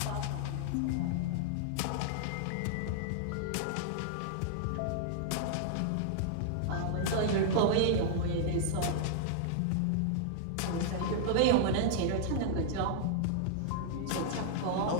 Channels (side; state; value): both; different; correlation -0.01